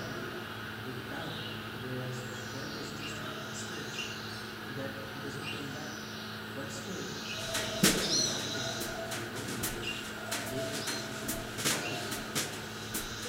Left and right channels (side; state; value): both; identical; correlation 1.00